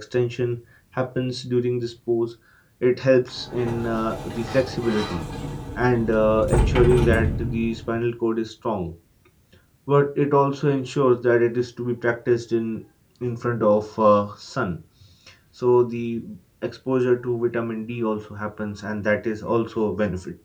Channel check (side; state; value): both; identical; correlation 1.00